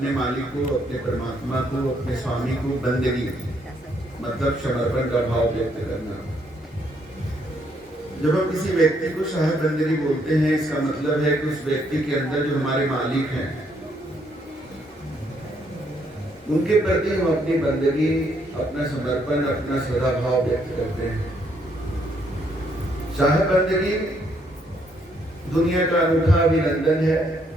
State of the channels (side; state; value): both; normal; correlation 0.71